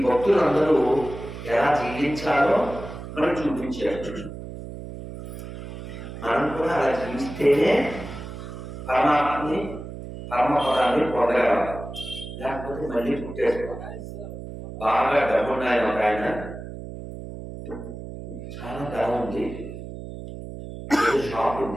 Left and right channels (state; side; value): noise; right; hum, 10 dB below the sound